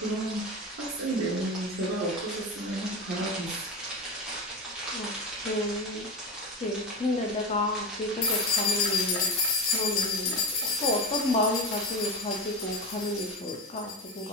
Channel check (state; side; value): normal; both; correlation 0.23